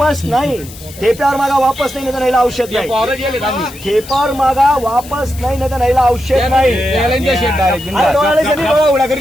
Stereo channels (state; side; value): noise; left; hiss, 18 dB below the sound